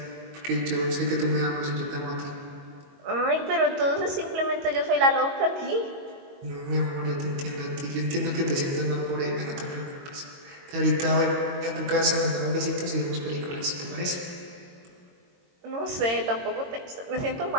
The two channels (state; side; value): late; left; 22 ms